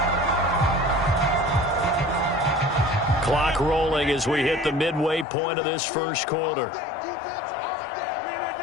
Clock rolling as we hit the midway point of this first quarter.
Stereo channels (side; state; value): right; drops out; at 5.2 s